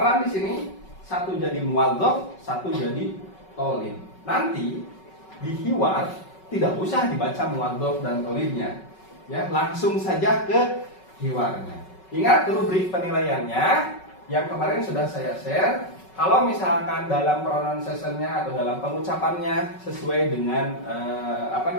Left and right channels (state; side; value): late; right; 5.3 ms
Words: di sini, satu jadi muwadzaf, satu jadi talib. Nanti di hiwar tidak usah dibaca muwadzaf dan talibnya, ya langsung saja ke hiwarnya. Ingat rubrik penilaiannya yang kemarin sudah saya share. Kalau misalkan dalam pronunciation-nya atau dalam pengucapannya sesuai dengan